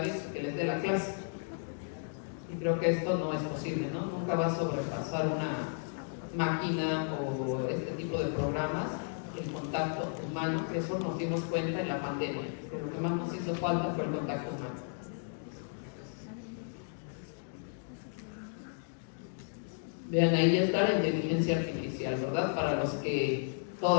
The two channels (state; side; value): silent; right; digital silence